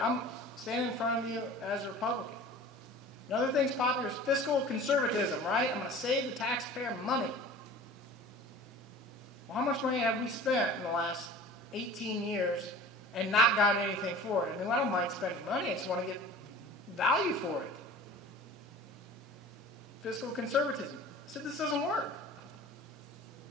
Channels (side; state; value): both; normal; correlation 0.42